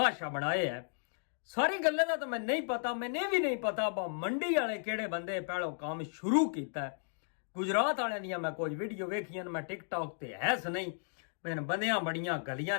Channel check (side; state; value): right; silent; digital silence